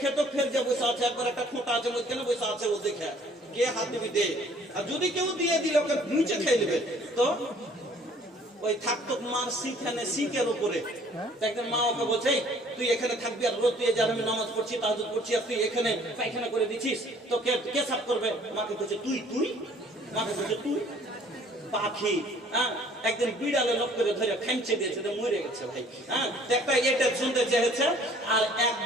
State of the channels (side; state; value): both; normal; correlation 0.57